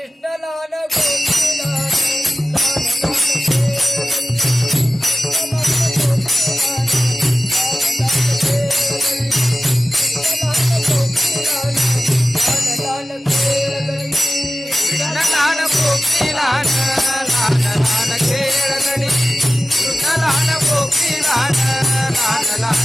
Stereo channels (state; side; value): normal; both; correlation 0.96